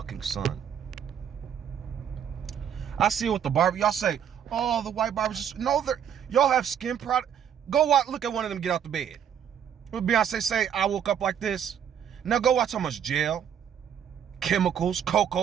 sun. I see it with the barber. Y'all say, oh, the white barbers just... No, y'all have skin product. Go look at one of them get out the bed. What Beyonce say, I woke up like this. Now go watch how much gel, chemicals,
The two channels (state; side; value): quieter; left; 8.7 dB